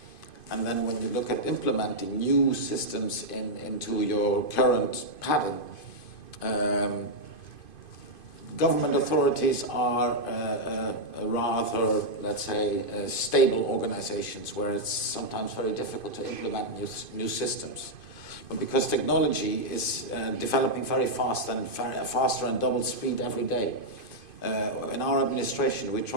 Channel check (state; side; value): late; right; 2.5 ms